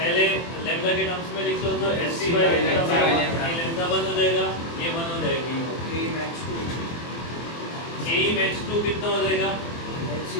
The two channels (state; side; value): late; right; 24 ms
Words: लैम्डा के टर्म्स में लिख लो तो hc बाय लैम्डा। ये लैम्डा 1 हो जाएगा, ये 1 हो जाएगी। k max 2 कितना हो जाएगा?